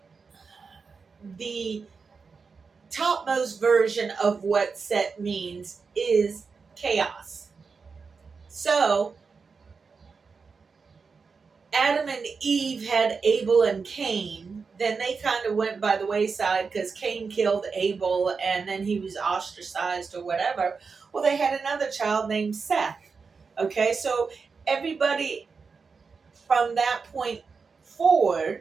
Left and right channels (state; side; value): quieter; left; 5.0 dB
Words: the topmost version of what Set means is chaos. So Adam and Eve had Abel and Cain. Then they kind of went by the wayside because Cain killed Abel and then he was ostracized or whatever. Well, they had another child named Seth. Okay, so everybody from that point